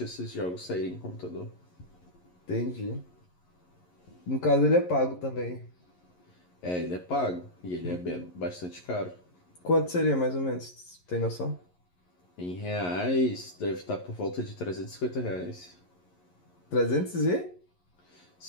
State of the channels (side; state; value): right; late; 11 ms